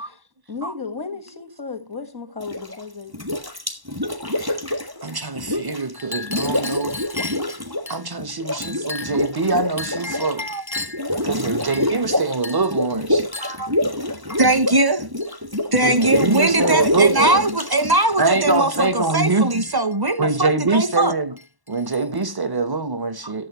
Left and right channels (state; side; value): late; left; 1.1 ms